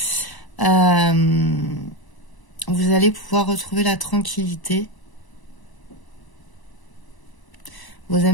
Vous allez pouvoir retrouver la tranquillité. Vos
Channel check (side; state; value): right; late; 1.0 ms